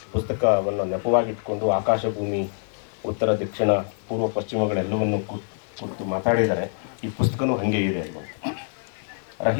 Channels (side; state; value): right; silent; 62 dB below the other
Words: ಪುಸ್ತಕವನ್ನು ನೆಪವಾಗಿಟ್ಕೊಂಡು ಆಕಾಶ ಭೂಮಿ, ಉತ್ತರ ದಕ್ಷಿಣ ಪೂರ್ವ ಪಶ್ಚಿಮಗಳೆಲ್ಲವನ್ನು ಕುರಿತು ಮಾತಾಡಿದ್ದಾರೆ. ಈ ಪುಸ್ತಕನೂ ಹಾಗೆ ಇದೆ.